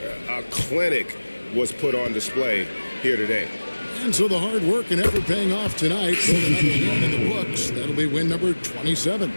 A clinic was put on display here today. And so the hard work and effort paying off tonight. So another win in the books. That'll be win number 27.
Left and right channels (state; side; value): inverted; both; correlation -1.00